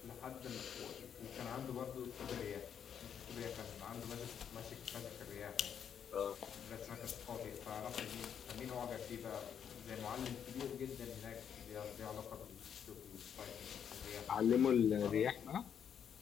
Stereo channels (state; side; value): quieter; right; 8.2 dB